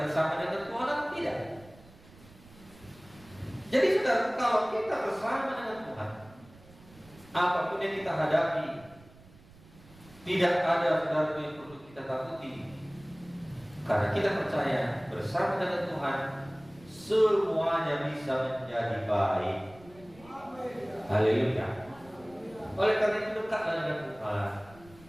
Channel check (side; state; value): right; noise; rumble, 24 dB below the sound